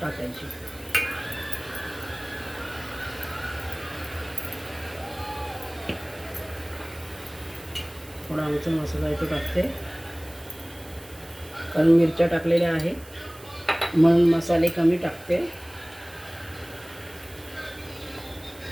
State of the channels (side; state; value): right; noise; hiss, 22 dB below the sound